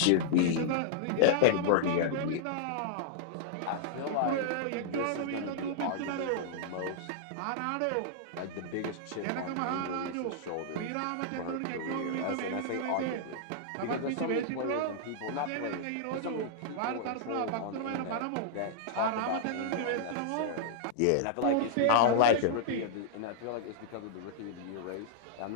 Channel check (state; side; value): different; both; correlation -0.02